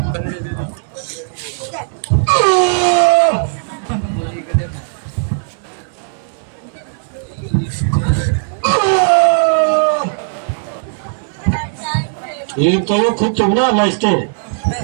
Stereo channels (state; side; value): silent; left; digital silence